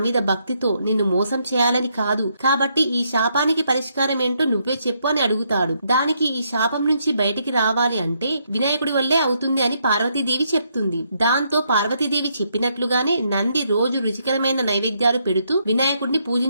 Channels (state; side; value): inverted; both; correlation -0.75